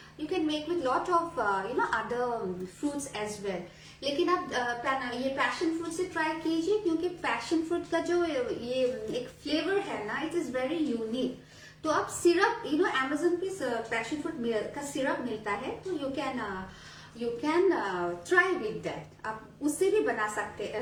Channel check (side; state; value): both; identical; correlation 1.00